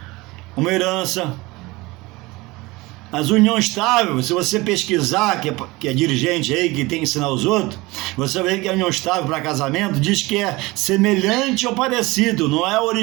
uma herança. Mas união estável, se você pesquisar, que é dirigente aí, que tem que ensinar os outros, você vai ver que a união estável para casamento diz que é semelhante ou parecido, não é o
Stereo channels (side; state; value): left; quieter; 22.1 dB